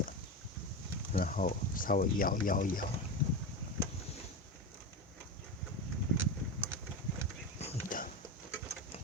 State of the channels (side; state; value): both; normal; correlation 0.21